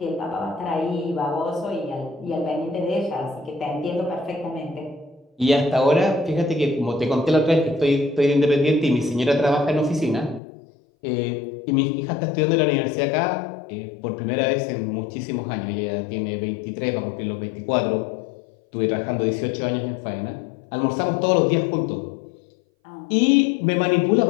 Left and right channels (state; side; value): drops out; right; at 10.4 s